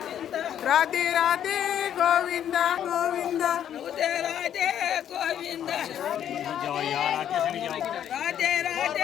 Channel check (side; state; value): right; quieter; 10.0 dB